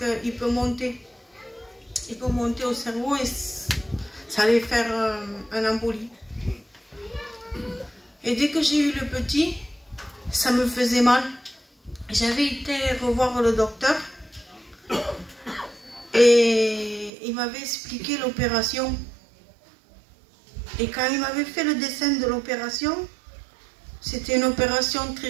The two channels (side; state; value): left; drops out; at 17.1 s